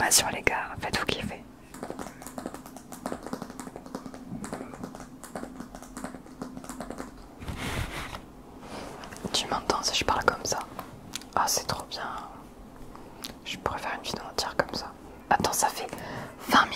les gars, faites-vous kiffer. Tu m'entends si je parle comme ça? Ah, c'est trop bien. Je pourrais faire une vidéo entière comme ça. Attends, ça fait 20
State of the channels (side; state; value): both; identical; correlation 1.00